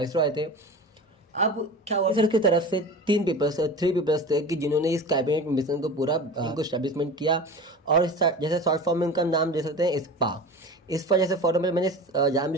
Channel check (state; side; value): normal; both; correlation 0.33